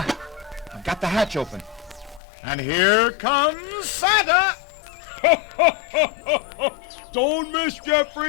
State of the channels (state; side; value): drops out; right; at 2.2 s